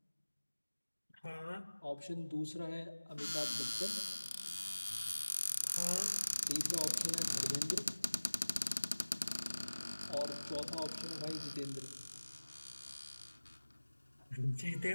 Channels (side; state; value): both; inverted; correlation -1.00